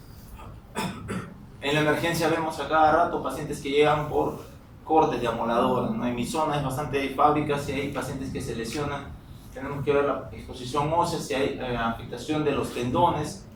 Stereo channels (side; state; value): both; identical; correlation 1.00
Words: En la emergencia vemos a cada rato pacientes que llegan por cortes de amoladora, ¿no? En mi zona es bastante fábrica, si hay pacientes que se lesionan, tenemos que ver la exposición ósea, si hay afectación de los tendones,